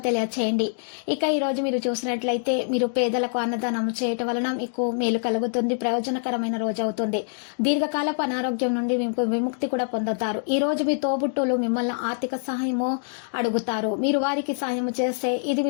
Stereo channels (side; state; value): right; silent; digital silence